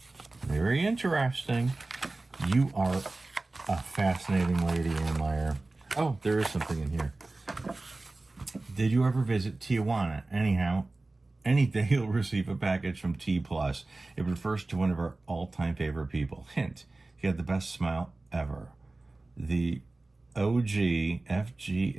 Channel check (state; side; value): quieter; left; 3.1 dB